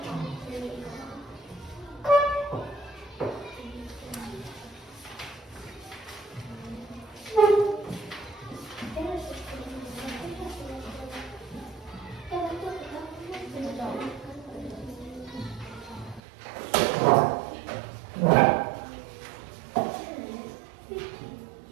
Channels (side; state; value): left; drops out; at 16.2 s